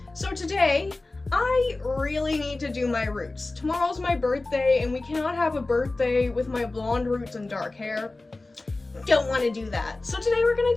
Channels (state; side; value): quieter; right; 3.1 dB